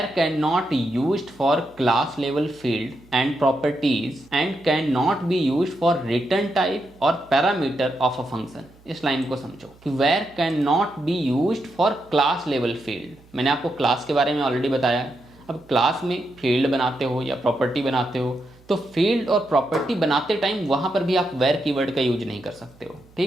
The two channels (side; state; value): right; noise; hum, 27 dB below the sound